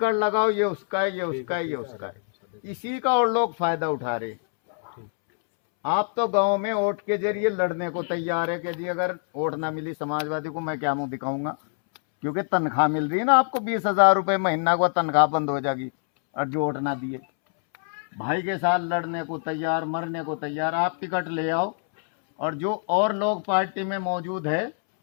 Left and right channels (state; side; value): silent; right; 62 dB below the other